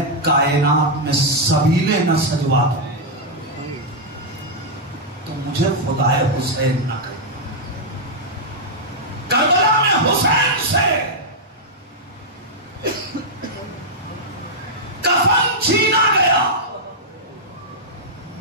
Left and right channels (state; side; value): normal; both; correlation -0.05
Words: کائنات میں سبیلے نہ سجوا دوں تو مجھے خدائے حسین نہ کرے۔ کربلا میں حسین سے کفن چھینا گیا،